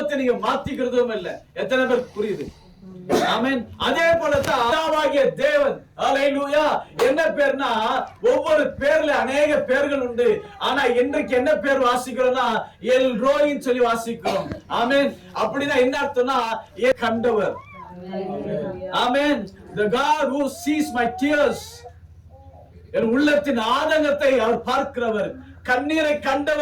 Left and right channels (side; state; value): both; identical; correlation 1.00